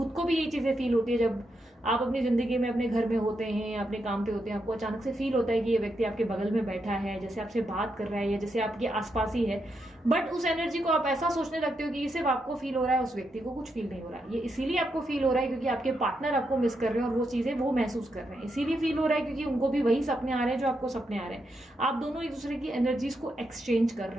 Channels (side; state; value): both; normal; correlation 0.82